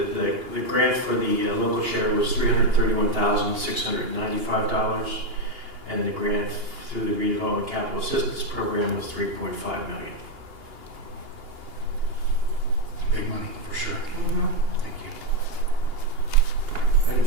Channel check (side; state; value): left; late; 2.9 ms